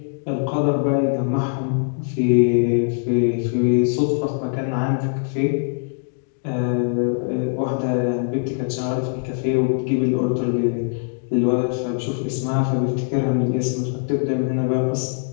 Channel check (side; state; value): right; silent; 64 dB below the other